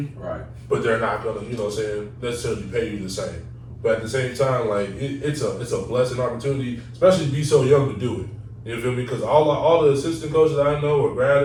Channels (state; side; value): identical; both; correlation 1.00